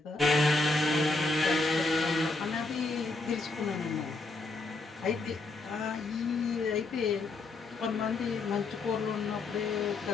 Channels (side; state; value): right; quieter; 3.3 dB